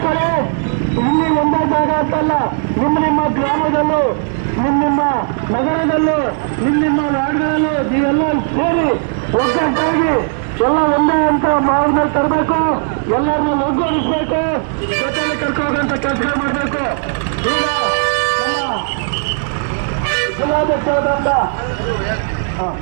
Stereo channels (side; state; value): left; silent; digital silence